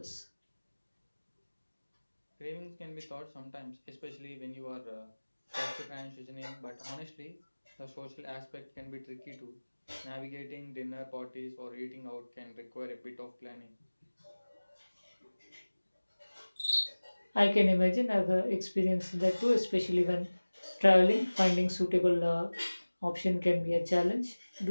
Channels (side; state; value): both; inverted; correlation -1.00